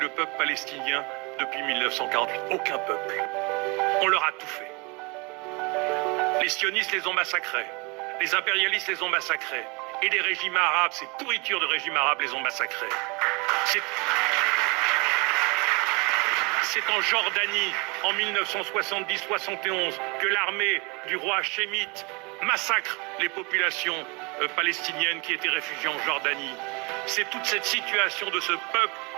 peuple palestinien depuis 1948. Aucun peuple. On leur a tout fait. Les sionistes les ont massacrés. Les impérialistes les ont massacrés. Et les régimes arabes, ces pourritures de régimes arabes les ont massacrés. C'est en Jordanie, en 1970-71, que l'armée du roi Hachémite massacre les populations palestiniennes qui étaient réfugiées en Jordanie. C'est toute cette situation de ce peuple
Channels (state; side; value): quieter; left; 28.7 dB